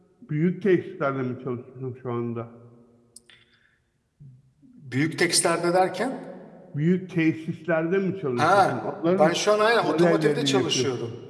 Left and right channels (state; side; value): identical; both; correlation 1.00